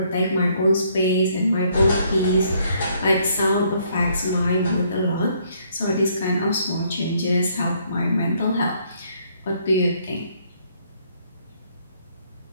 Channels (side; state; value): both; inverted; correlation -0.67